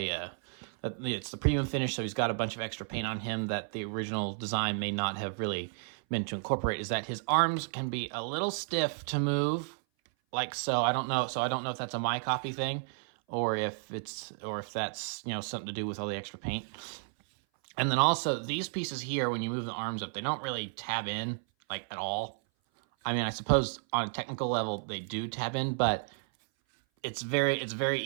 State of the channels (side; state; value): left; silent; 56 dB below the other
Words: the premium finish, so he's got a bunch of extra paint on him that the original design may not have really meant to incorporate, is that his arms can be a little stiff to move, like so. I don't know if that's a my copy thing or if that's, you know, something to do with all the extra paint. And then also these pieces here, when you move the arms up, they don't really tab in like at all. I mean, I suppose on a technical level they do tab in, but it's very